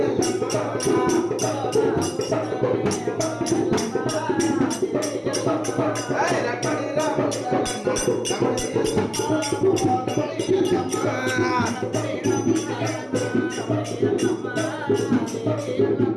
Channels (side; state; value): both; identical; correlation 1.00